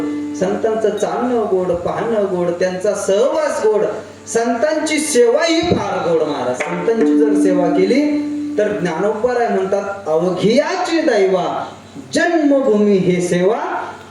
संतांचं चालणं गोड, पाहणं गोड, त्यांचा सहवास गोड, संतांची सेवा ही फार गोड. महाराज संतांची जर सेवा केली तर ज्ञानोबराय म्हणतात अवघियाची दैवा जन्मभूमी हे सेवा,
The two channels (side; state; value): both; identical; correlation 1.00